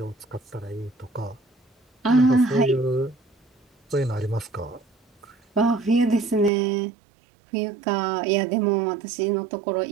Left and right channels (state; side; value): drops out; left; at 6.5 s